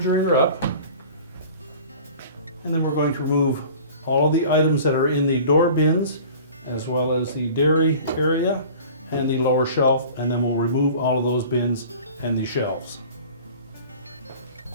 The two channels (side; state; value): both; inverted; correlation -0.43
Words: up, and then we're going to remove all of the items that are in the door bins, as well as the dairy area and the lower shelf, and then we'll remove all of those bins and the shelves.